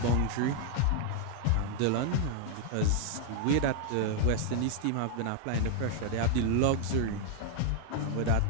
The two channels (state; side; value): different; both; correlation 0.00